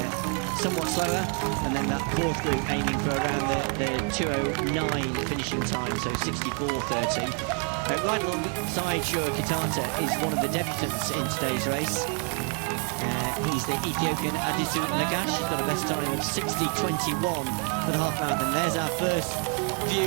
And then that fourth group aiming for around the 2:09 finishing time, so 64:30. Right alongside Shura is one of the debutants in today's race. He's the Ethiopian Abderehman, got a best time of 60:21 for the half marathon. There's our first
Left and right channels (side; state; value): left; quieter; 37.6 dB